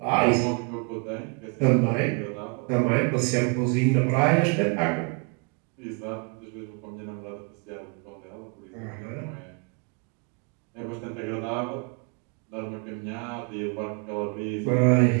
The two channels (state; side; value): quieter; left; 34.4 dB